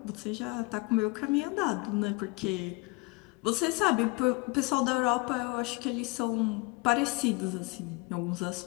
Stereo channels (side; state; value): right; quieter; 26.0 dB